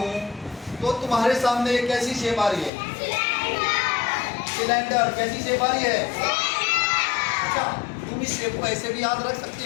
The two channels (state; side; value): drops out; right; at 2.7 s